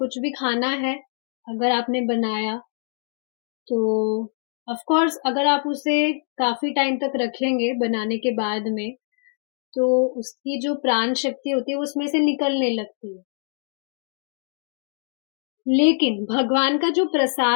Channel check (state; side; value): silent; right; 63 dB below the other